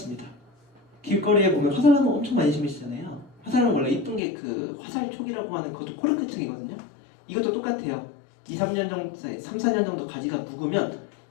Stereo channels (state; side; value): drops out; right; at 4.2 s